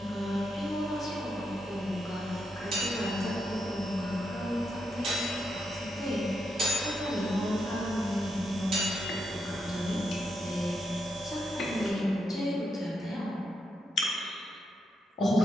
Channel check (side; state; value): both; normal; correlation 0.83